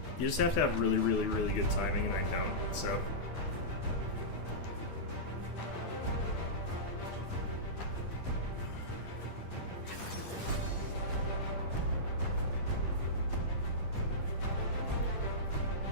You just have to have really, really, really good timing, and I don't, so.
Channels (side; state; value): right; late; 10 ms